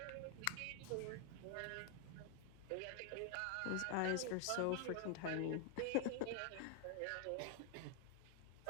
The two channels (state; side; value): different; both; correlation 0.00